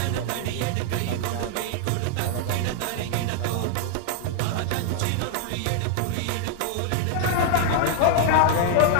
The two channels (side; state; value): both; different; correlation 0.00